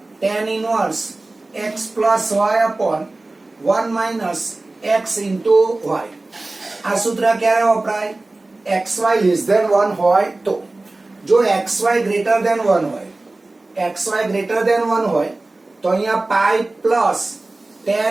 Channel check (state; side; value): quieter; left; 3.0 dB